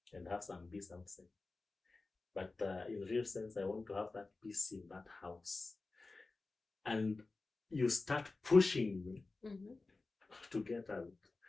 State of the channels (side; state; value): right; quieter; 3.6 dB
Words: and have some peace outside. But in real sense, I want to have that peace in that house. And you start pushing me to get out.